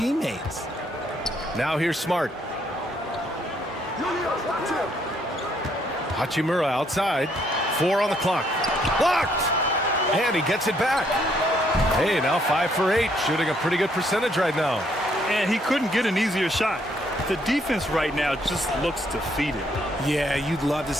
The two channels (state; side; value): normal; both; correlation 0.69